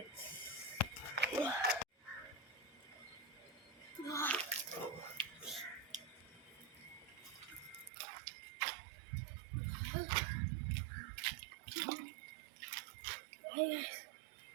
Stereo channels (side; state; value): left; drops out; at 7.9 s